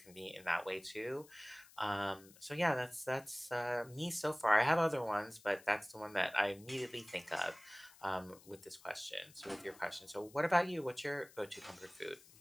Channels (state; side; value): noise; left; hiss, 23 dB below the sound